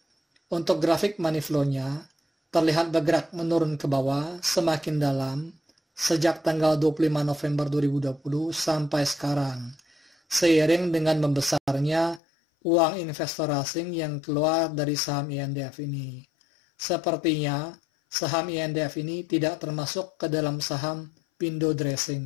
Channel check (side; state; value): right; drops out; at 12.2 s